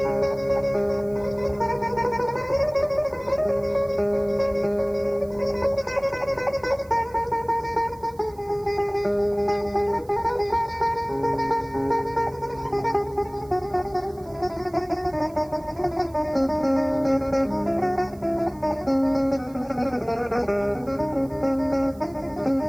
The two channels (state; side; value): noise; right; hiss, 27 dB below the sound